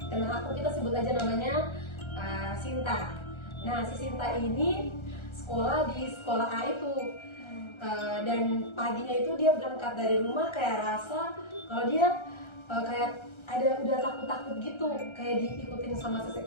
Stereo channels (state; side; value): late; right; 1.3 ms